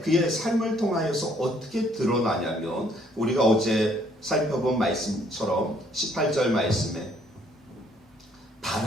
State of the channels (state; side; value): normal; both; correlation 0.64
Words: 그의 삶을 통하여서 어떻게 드러나냐면 우리가 어제 살펴본 말씀처럼 18절 말씀에